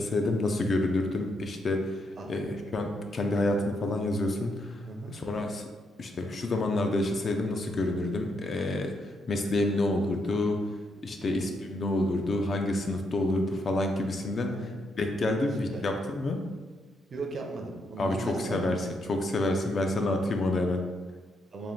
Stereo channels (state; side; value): normal; both; correlation 0.78